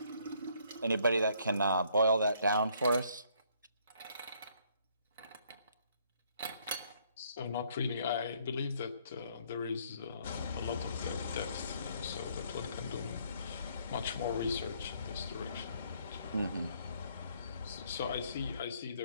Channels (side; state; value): both; inverted; correlation -0.66